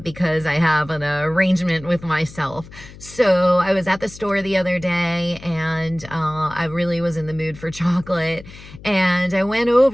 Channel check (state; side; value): noise; left; hum, 18 dB below the sound